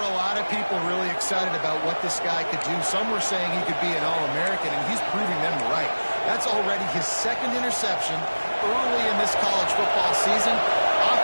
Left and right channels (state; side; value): inverted; both; correlation -1.00